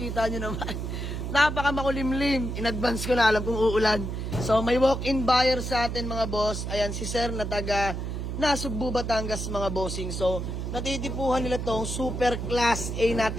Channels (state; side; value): noise; right; hum, 4 dB below the sound